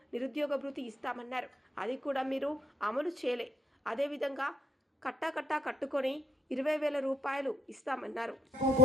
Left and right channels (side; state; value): both; normal; correlation 0.75